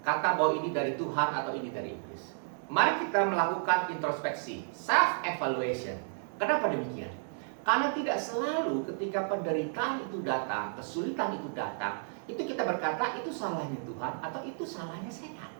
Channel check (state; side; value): silent; left; digital silence